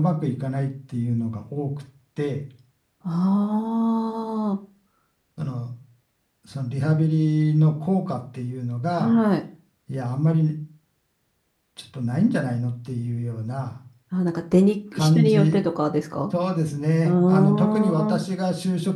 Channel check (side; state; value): both; identical; correlation 1.00